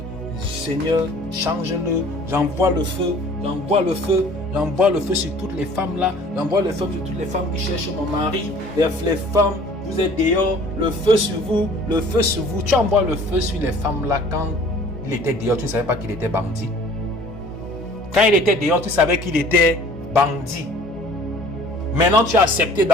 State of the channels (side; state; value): both; normal; correlation 0.50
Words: Seigneur, change-le, j'envoie le feu, j'envoie le feu, j'envoie le feu sur toutes les femmes là, j'envoie le feu sur toutes les femmes qui cherchent mon mari, les femmes, vous êtes dehors, le feu sur vous, le feu sur vous. Tu envoies le feu sur les femmes là quand il était dehors, tu ne savais pas qu'il était bandit. Quand il était dehors, tu savais qu'il était bandit. Maintenant, tu as accepté